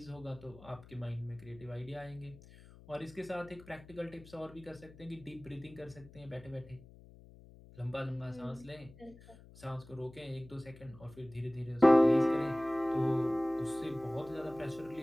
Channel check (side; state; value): left; noise; hum, 21 dB below the sound